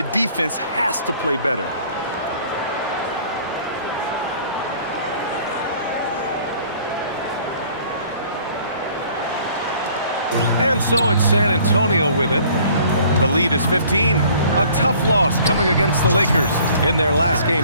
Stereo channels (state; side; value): inverted; both; correlation -0.54